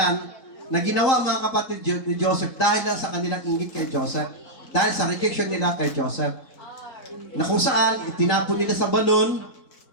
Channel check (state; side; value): late; right; 3.8 ms